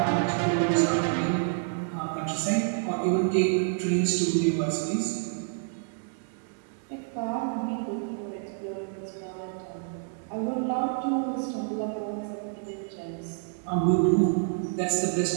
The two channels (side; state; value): left; silent; 59 dB below the other